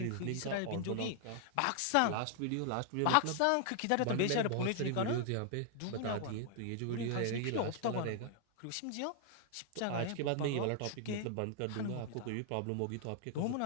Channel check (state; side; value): different; both; correlation 0.00